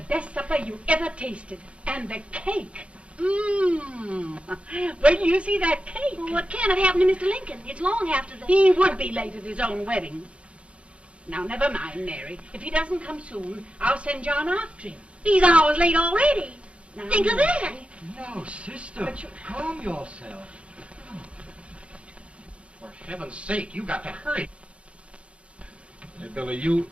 supper you ever tasted. And the cake. Mmm. Wait till you see that cake. Well, what can have happened to Mr. Lincoln? It's long after the... He would be late at his own wedding. Now, never mind, Mary. If he doesn't come soon, I'll send John after him. He's hours late already. Now, Think of that. No, sister, But calm yourself. heaven's sake, you got to hurry. Hey, Billy, you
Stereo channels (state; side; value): late; left; 0.061 ms